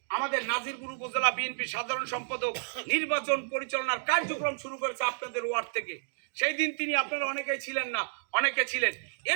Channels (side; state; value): left; silent; digital silence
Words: আমাদের নাজিরপুর উপজেলা বিএনপি সাধারণ সম্পাদক নির্বাচন পরিচালনার কার্যক্রম শুরু করেছে আপনাদের ওয়ার্ড থেকে। সেই দিন তিনি, আপনারা অনেকেই ছিলেন না, অনেকে ছিলেন,